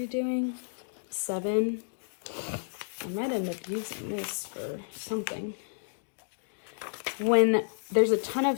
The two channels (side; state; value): right; silent; digital silence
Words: doing? 7. I might end up using this for something. When there's a ton